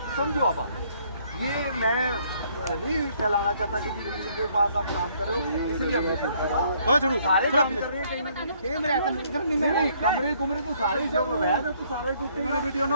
समझो। अब ये मैं नहीं फैलाना चाहता कि जी किसी के पास आप काम कर रहे हो, इसलिए मैं सारे काम कर रहे हैं कहीं नहीं, कमरे कुमरे तो सारे जब वैध है तो सारे टूटेंगे। वीडियो ना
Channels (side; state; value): both; inverted; correlation -0.65